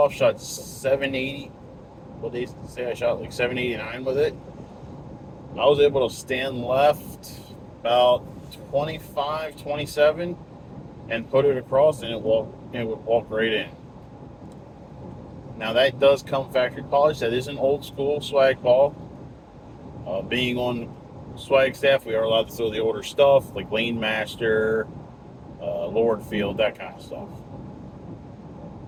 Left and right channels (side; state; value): both; identical; correlation 1.00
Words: shot 780. What they say I shot like 789 with it. I was able to stand left about 25, 27 and put it across, and it would walk right in. Now that does come factory polished. That is an old school swag ball. Being on swag staff, we are allowed to throw the older stuff like Lane Master, Lord Field, that kind of stuff.